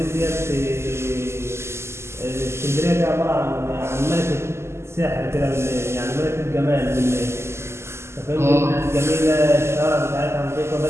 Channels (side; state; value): left; late; 0.13 ms